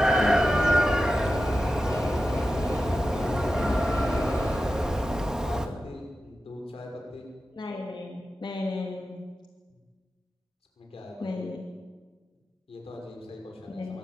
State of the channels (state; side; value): normal; both; correlation 0.92